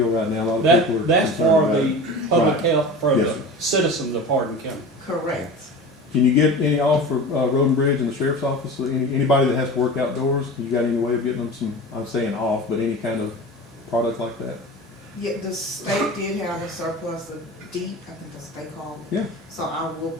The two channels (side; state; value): both; normal; correlation 0.33